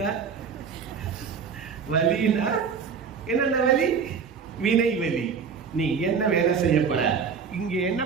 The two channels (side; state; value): left; quieter; 6.2 dB